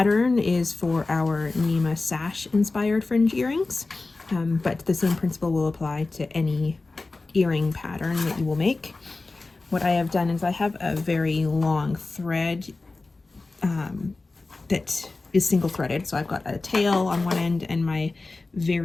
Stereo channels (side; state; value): right; quieter; 3.5 dB